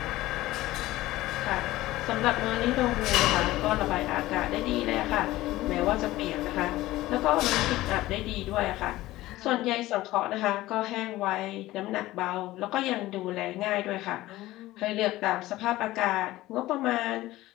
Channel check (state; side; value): quieter; right; 17.0 dB